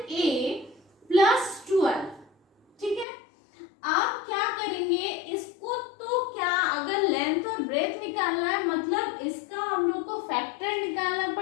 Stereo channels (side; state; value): right; drops out; at 3.1 s